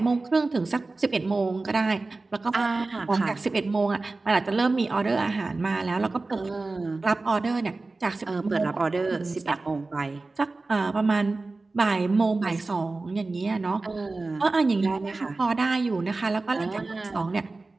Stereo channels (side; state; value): left; quieter; 3.4 dB